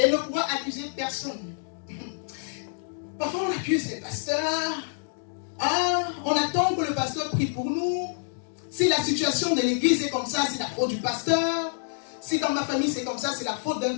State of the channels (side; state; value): right; silent; digital silence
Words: ne pourra accuser personne. Parfois on accuse les pasteurs. Ah, on attend que le pasteur prie pour nous. Si la situation de l'église est comme ça, c'est la faute du pasteur. Si dans ma famille c'est comme ça, c'est la faute d'un